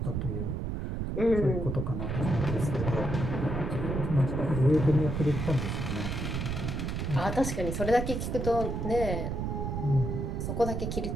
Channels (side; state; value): right; noise; rumble, 2 dB below the sound